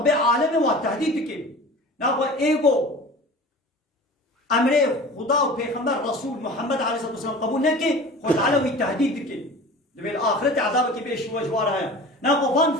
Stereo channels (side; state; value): both; normal; correlation 0.39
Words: عالمي والتهديد كيف ناخذ ايجو امر خدا و پیغمبر رسول محمد عليه الصلاه والسلام قبول نكي خد علوي التهديد كيف بالاخره عذابك بيش وجوارها ناخذ فان